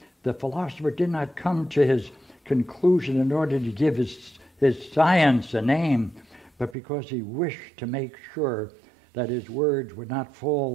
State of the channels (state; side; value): drops out; left; at 6.8 s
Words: The philosopher did not come to his conclusion in order to give his science a name, but because he wished to make sure that his words would not